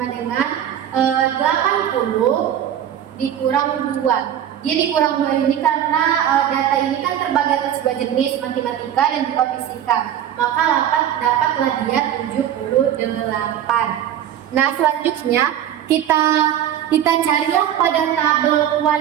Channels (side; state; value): left; quieter; 10.4 dB